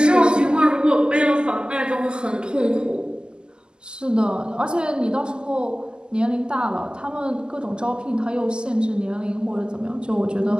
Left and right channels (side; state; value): left; late; 0.047 ms